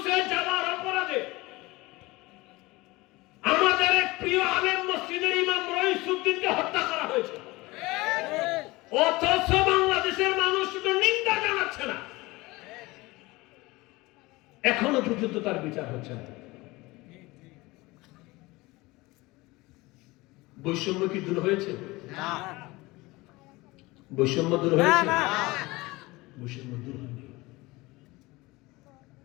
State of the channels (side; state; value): right; quieter; 21.6 dB